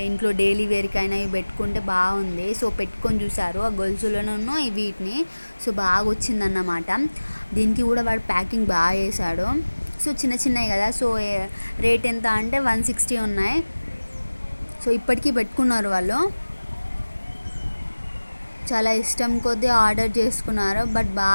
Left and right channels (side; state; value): both; inverted; correlation -1.00